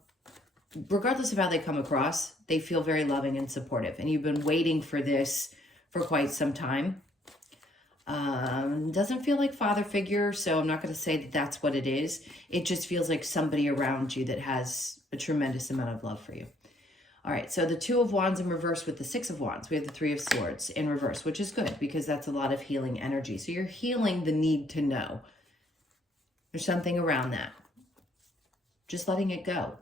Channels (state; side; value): normal; both; correlation 0.66